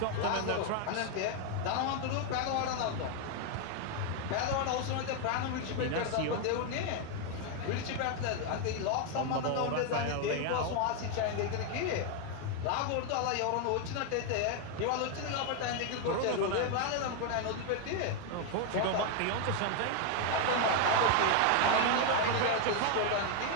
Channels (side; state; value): both; different; correlation 0.01